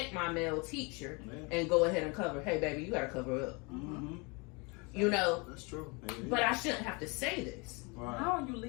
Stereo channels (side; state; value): right; quieter; 29.7 dB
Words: my male teacher and go ahead and cover. Hey, baby, you got to cover up. You know, That's true. but I shouldn't have to say this. How are you